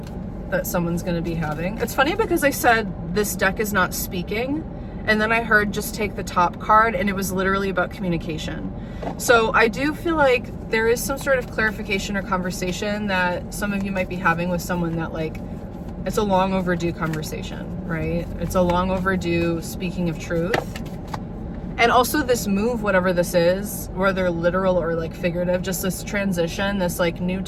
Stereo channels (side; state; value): both; identical; correlation 1.00